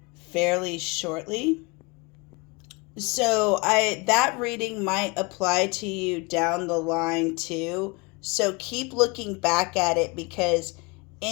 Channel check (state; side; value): quieter; right; 26.7 dB